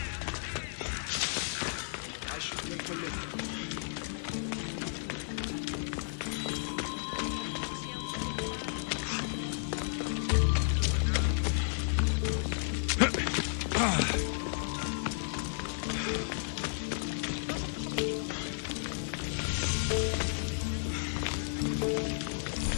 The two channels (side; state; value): right; silent; digital silence